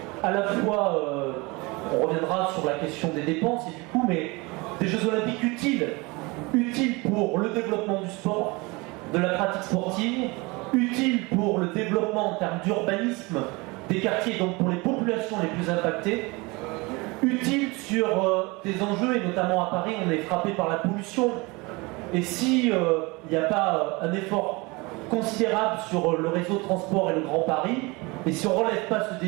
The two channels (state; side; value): quieter; left; 25.4 dB